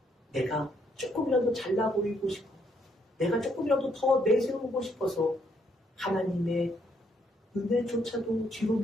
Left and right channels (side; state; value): both; normal; correlation 0.72